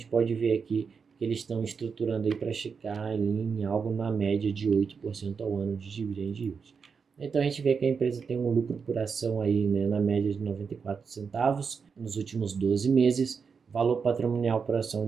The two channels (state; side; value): quieter; left; 5.7 dB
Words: pode ver aqui que eles estão estruturando aí para chegar ali em algo na média de 8% ao ano de dividend yield. Então a gente vê que a empresa tem um lucro por ação aí, né, na média de 94 centavos nos últimos 12 meses, valor patrimonial por ação